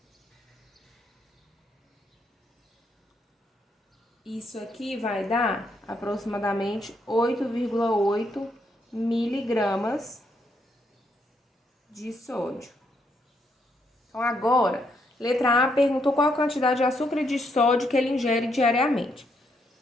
isso aqui vai dar aproximadamente 8,8 miligramas de sódio. Então, agora, letra A perguntou qual a quantidade de açúcar e de sódio que ele ingere diariamente.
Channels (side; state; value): both; normal; correlation 0.75